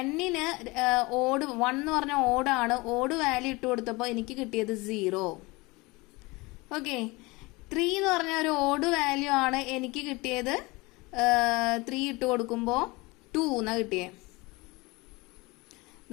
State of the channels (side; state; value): right; quieter; 23.9 dB